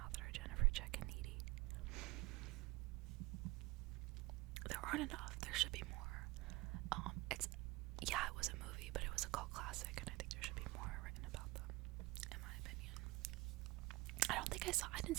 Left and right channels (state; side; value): quieter; left; 21.1 dB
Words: that are Jennifer, Jack, and Needy. There aren't enough. There should be more. It was a movie, but it was a cult classic, and I think there should be more written about them, in my opinion. I didn't